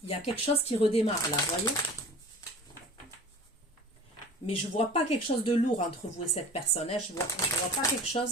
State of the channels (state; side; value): normal; both; correlation 0.41